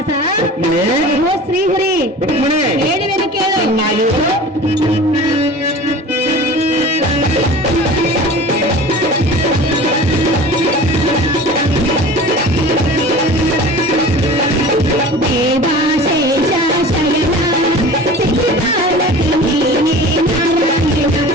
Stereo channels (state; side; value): normal; both; correlation 0.39